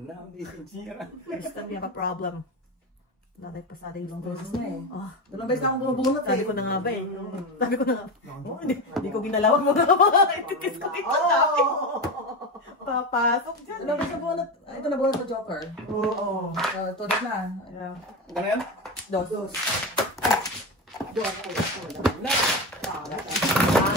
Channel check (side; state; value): both; normal; correlation 0.19